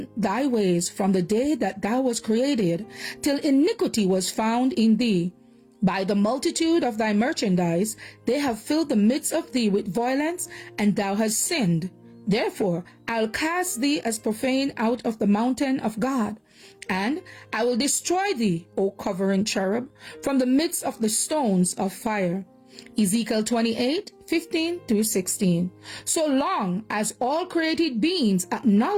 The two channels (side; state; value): both; identical; correlation 1.00